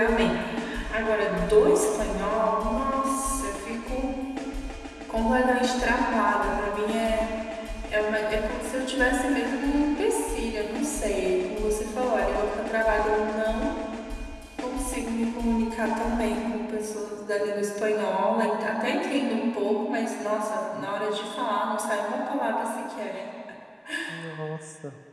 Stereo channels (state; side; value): identical; both; correlation 1.00